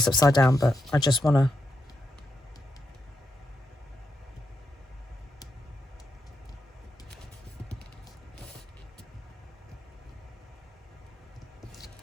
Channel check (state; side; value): normal; both; correlation 0.83